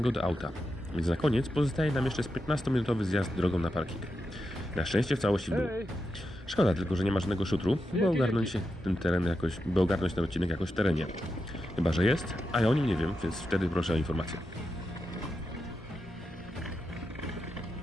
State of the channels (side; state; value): both; normal; correlation 0.88